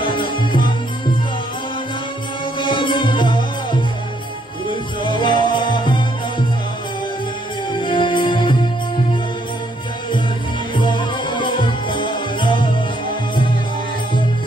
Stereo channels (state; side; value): normal; both; correlation 0.71